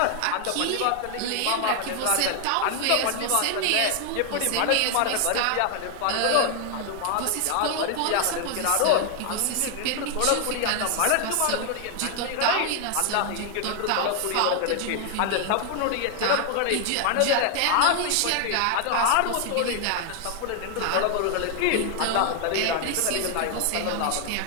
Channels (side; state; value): both; different; correlation 0.00